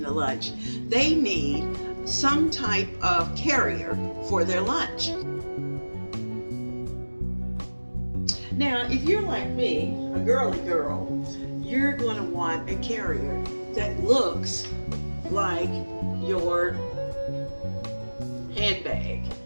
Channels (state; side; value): inverted; both; correlation -1.00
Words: the lunch, they need some type of carrier for their lunch. Now, if you're like me, a girly girl, you're going to want a carrier that looks like your handbag.